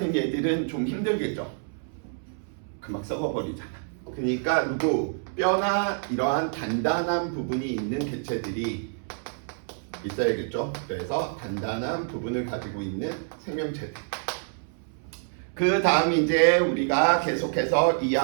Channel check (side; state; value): left; silent; 60 dB below the other